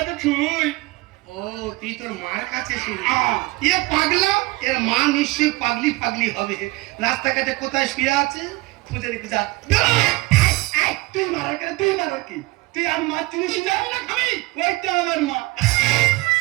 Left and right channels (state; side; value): quieter; left; 22.7 dB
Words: ছুই। ও তুই তোর মার কাছে শুই। এ পাগলা, এর মা নিশ্চয়ই পাগলি পাগলি হবে। রাস্তাঘাটে কোথায় শুয়ে আছে খুঁজে রেখে যা। তুই মারার কেন? তুই মারার কি? তুই আর মা চিনিস না? খাবি ওইটা আমার মা।